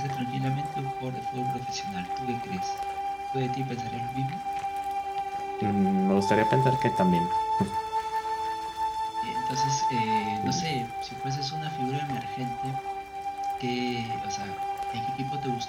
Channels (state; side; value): identical; both; correlation 1.00